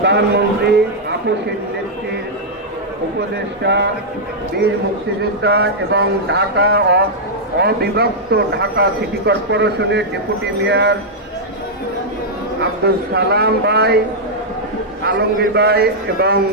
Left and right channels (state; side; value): normal; both; correlation -0.06